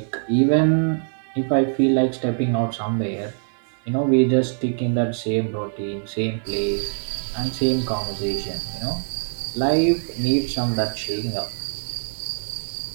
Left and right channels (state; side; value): silent; left; 63 dB below the other